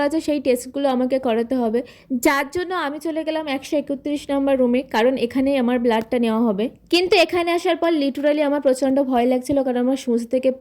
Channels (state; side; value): identical; both; correlation 1.00